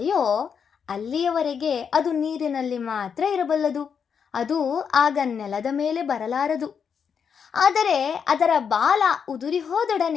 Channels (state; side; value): quieter; right; 6.9 dB